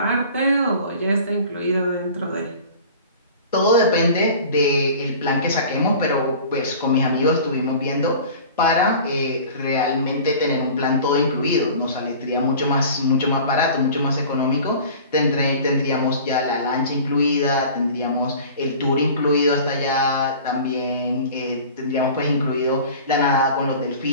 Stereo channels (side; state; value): both; inverted; correlation -0.42